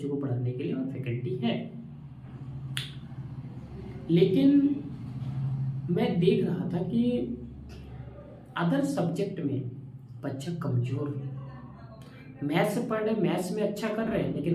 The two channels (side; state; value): both; identical; correlation 1.00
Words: को पढ़ाने के लिए और फैकल्टी है। लेकिन मैं देख रहा था कि अदर सब्जेक्ट में बच्चा कमजोर है। मैथ्स पढ़ रहे, मैथ्स में अच्छा कर रहे हैं,